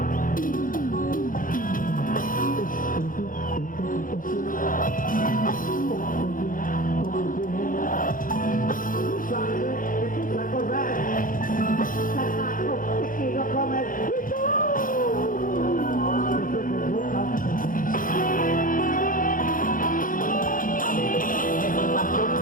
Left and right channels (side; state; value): right; late; 0.40 ms